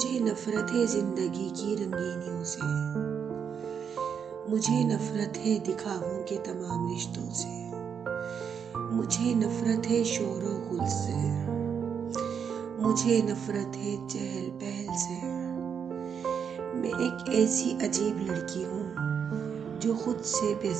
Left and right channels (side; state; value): left; quieter; 7.2 dB